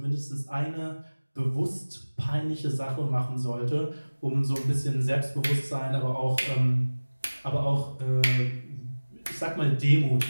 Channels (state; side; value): inverted; both; correlation -1.00